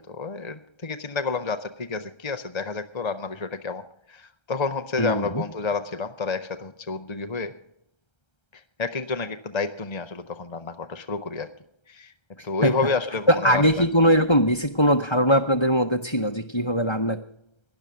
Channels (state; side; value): late; right; 1.3 ms